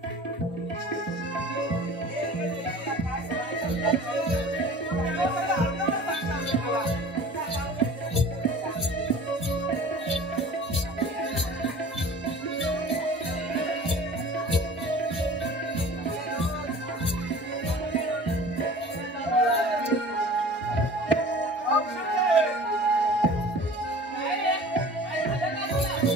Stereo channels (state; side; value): normal; both; correlation 0.43